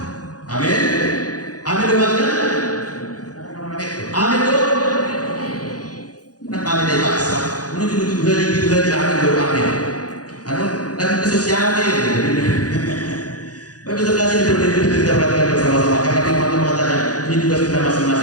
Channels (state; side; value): late; right; 0.68 ms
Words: Amin. Amin dengannya. Amin dong. Nak amin dari paksa. Menuju tujuh hari amin dong amin. Anu dan sosialnya. Baik terkasih diperhatikan kita perhatikan bersama-sama karena firman Tuhan mengatakan ini tugas kita